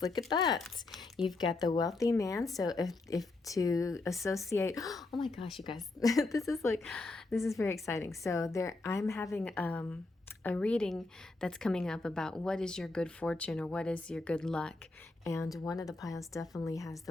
Look at that. You've got the wealthy man. So if to associate, oh my gosh, you guys, this is very exciting. So I'm having a reading that's coming up about what is your good fortune or what is your good luck, and one of the piles definitely has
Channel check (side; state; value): right; quieter; 3.2 dB